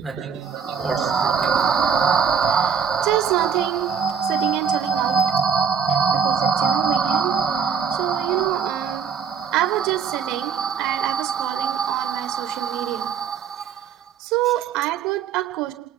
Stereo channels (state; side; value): quieter; left; 7.2 dB